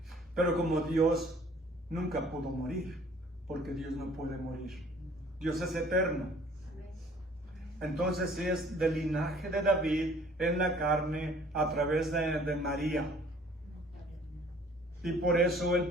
Pero como Dios nunca pudo morir, porque Dios no puede morir. Dios es eterno. Entonces sí es del linaje de David en la carne a través de María. Y por eso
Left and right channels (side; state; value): both; normal; correlation 0.55